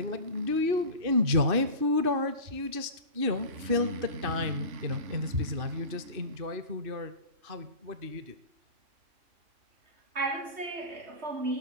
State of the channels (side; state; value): left; late; 2.6 ms